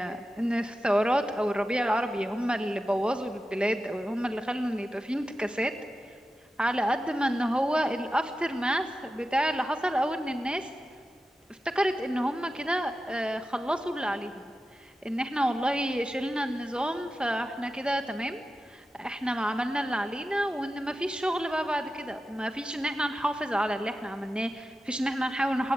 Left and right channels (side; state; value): both; normal; correlation 0.92